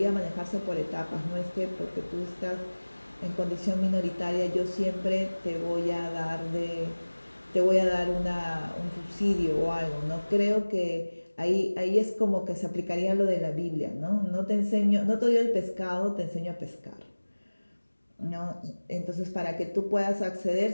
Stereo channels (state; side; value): inverted; both; correlation -1.00